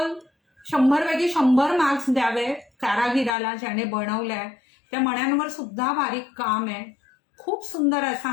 100 पैकी 100 मार्क्स द्यावे कारागिराला ज्याने बनवलाय. त्या मण्यांवर सुद्धा बारीक काम आहे. खूप सुंदर असा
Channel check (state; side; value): drops out; right; at 3.4 s